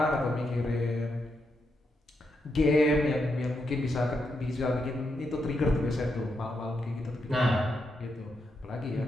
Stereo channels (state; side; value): normal; both; correlation 0.82